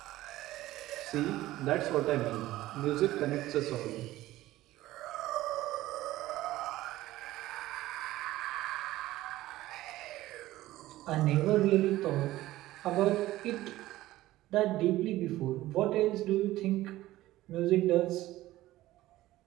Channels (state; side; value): quieter; left; 16.1 dB